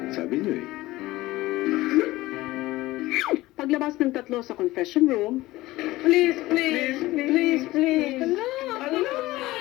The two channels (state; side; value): quieter; right; 18.1 dB